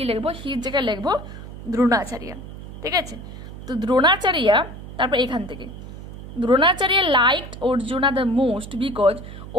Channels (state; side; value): noise; right; hum, 12 dB below the sound